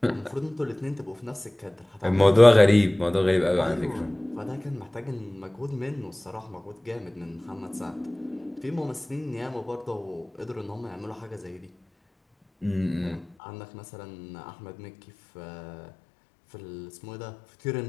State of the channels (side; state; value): right; drops out; at 13.4 s